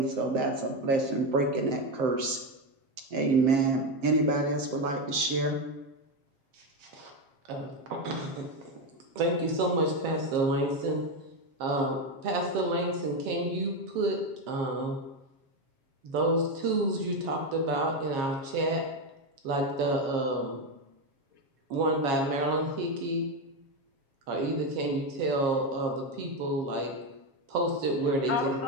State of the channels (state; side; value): late; left; 7.4 ms